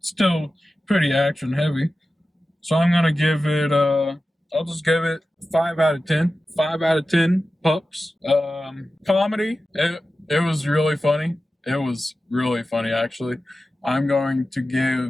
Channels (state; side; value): normal; both; correlation 0.94